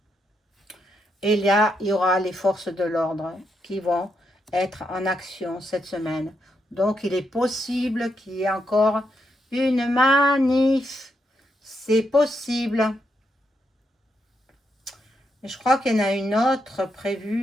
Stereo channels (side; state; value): both; normal; correlation 0.81